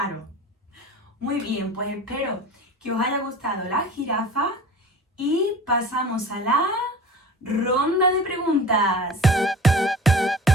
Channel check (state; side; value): normal; both; correlation 0.39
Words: Muy bien, pues espero que os haya gustado la jirafa y pasamos a la ronda de preguntas.